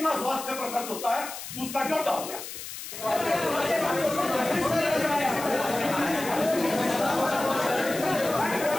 स्वास्थ्य पर खर्च होता है उसका ड्योटा हो गया।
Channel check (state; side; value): noise; left; hiss, 10 dB below the sound